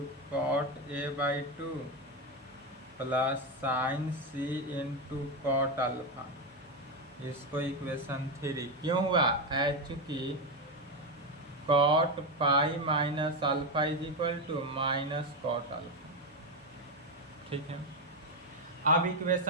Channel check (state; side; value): normal; both; correlation 0.09